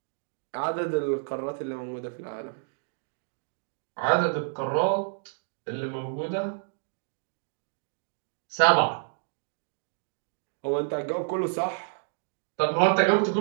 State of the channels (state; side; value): silent; left; digital silence